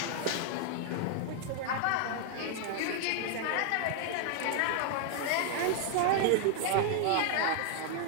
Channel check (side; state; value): both; different; correlation 0.00